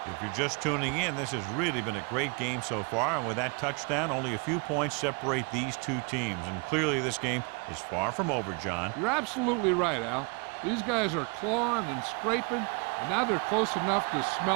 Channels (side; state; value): left; quieter; 33.0 dB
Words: If you're just tuning in, this has really been a great game so far, and with that touchdown, only a few points separate these two teams, and clearly this game is far from over, John. You're absolutely right, Al. These guys are clawing and scraping, and now they're close enough to